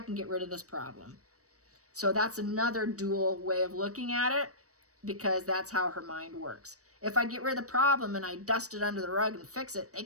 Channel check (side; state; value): left; late; 0.66 ms